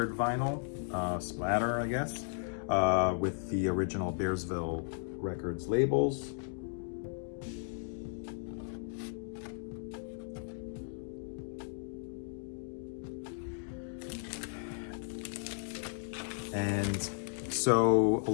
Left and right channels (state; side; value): silent; right; digital silence